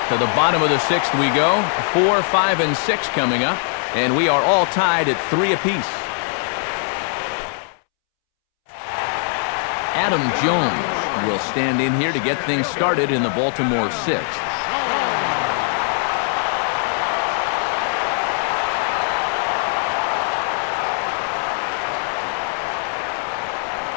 To the bottom of the 6th we go. 4, 5, and 6 coming up, and we are all tied at 3 apiece. Adam Jones will stand in here to get things started in the Baltimore 6th.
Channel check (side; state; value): right; silent; 65 dB below the other